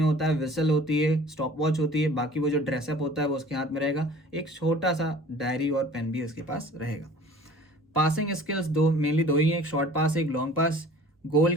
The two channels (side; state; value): both; normal; correlation 0.47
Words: होता है, विसल होती है, स्टॉप वॉच होती है, बाकी वो जो ड्रेसअप होता है वो उसके हाथ में रहेगा, एक छोटा सा डायरी और पेन भी उसके पास रहेगा। पासिंग स्किल्स मेनली दो ही हैं, एक शॉर्ट पास एक लॉन्ग पास। गोल